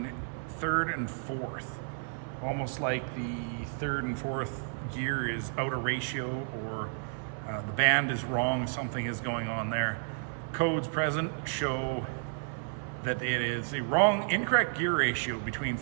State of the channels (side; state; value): left; silent; 57 dB below the other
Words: third and fourth, almost like the third and fourth gear is out of ratio, or the band is wrong, something is going on there. Codes present show that it is a incorrect gear ratio between